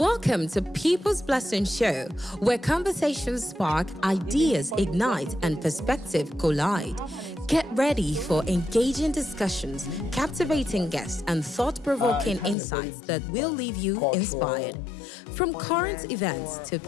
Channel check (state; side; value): drops out; right; at 12.6 s